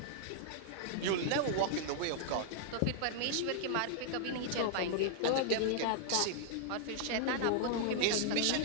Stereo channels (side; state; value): both; different; correlation -0.01